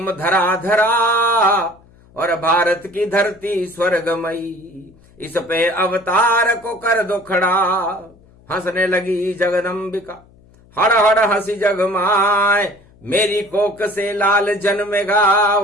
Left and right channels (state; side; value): noise; left; hum, 28 dB below the sound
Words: धरा धरा। और भारत की धरती स्वर्गमयी, इस पे अवतार को कर दो खड़ा। हंसने लगी जगदम्बिका, हड़ हड़ हंसी जगमाए। मेरी कोक से लाल जन्मेगा